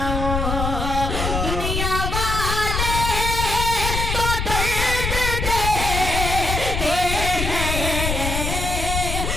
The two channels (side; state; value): left; noise; rumble, 2 dB below the sound